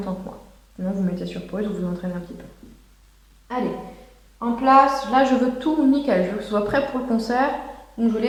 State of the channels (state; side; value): identical; both; correlation 1.00